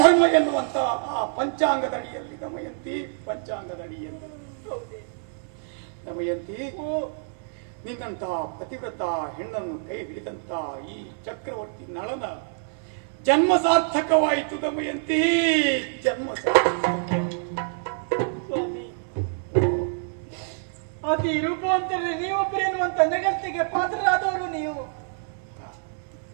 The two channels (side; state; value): left; silent; 61 dB below the other